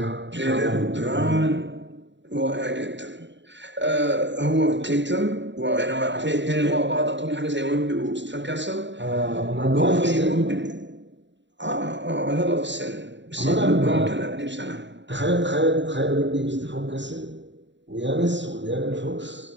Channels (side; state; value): left; late; 0.53 ms